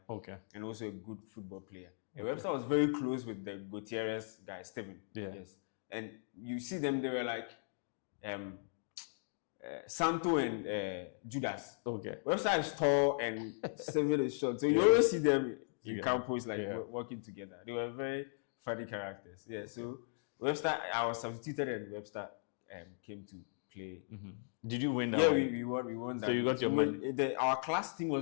Okay. And also a good football player. And Webster was very close with the Gutierrez guy, Steven. Yeah. Yes. And you see them, they were like Santo and Judas. Okay. Webster is tall and Steven is short. So you always see them in campus working together. They were very funny characters. Yeah. So Webster, I was substituted and Webster came to play. Did you win that? Yeah, we won that. So you got your money? Our class team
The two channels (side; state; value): right; silent; digital silence